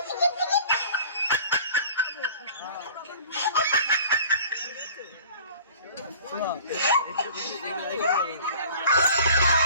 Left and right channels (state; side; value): inverted; both; correlation -0.46